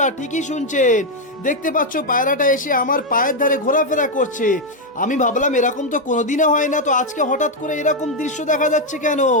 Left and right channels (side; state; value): both; normal; correlation 0.02